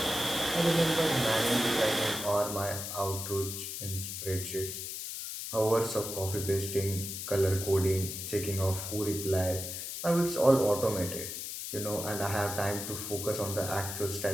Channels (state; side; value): noise; left; hiss, 6 dB below the sound